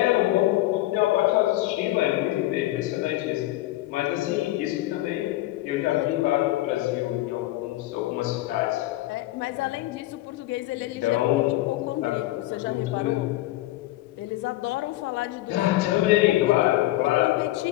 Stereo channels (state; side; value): quieter; right; 16.9 dB